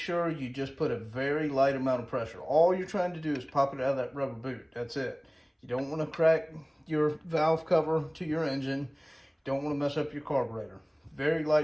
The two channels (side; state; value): both; identical; correlation 1.00